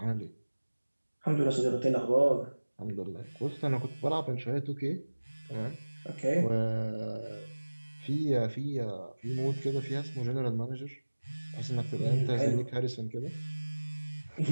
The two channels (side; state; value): both; inverted; correlation -1.00